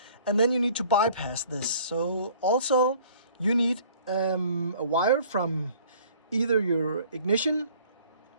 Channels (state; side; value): inverted; both; correlation -0.54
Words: and then you need to bypass this. So also you need a wire from either your ignition